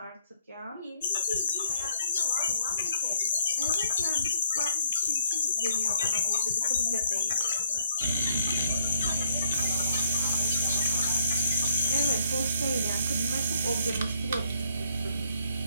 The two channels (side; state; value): both; inverted; correlation -0.67